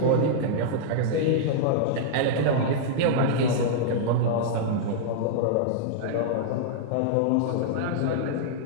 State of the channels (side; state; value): both; different; correlation -0.02